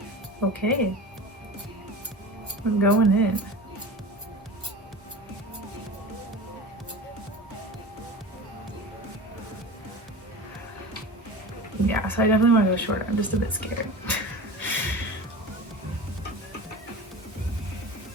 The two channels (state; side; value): normal; both; correlation 0.33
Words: Okay, we're going in. Yeah, so I definitely want to go shorter. I'm just a bit scared.